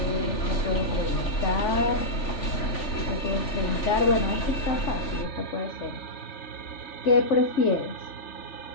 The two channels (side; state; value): right; late; 3.4 ms